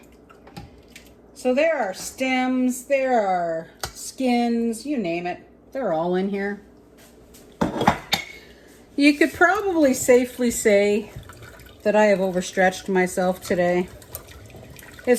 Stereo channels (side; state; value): both; identical; correlation 1.00